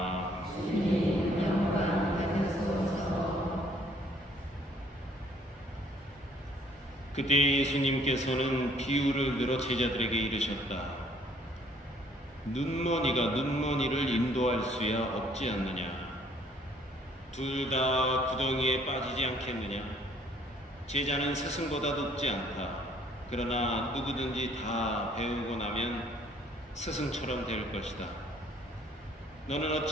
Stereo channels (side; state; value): both; normal; correlation 0.61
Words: 주님 영광 받으소서. 그때 예수님께서는 비유를 들어 제자들에게 이르셨다. 눈먼이가 눈먼이를 인도할 수야 없지 않느냐? 둘 다 구덩이에 빠지지 않겠느냐? 제자는 스승보다 높지 않다. 그러나 누구든지 다 배우고 나면 스승처럼 될 것이다. 너는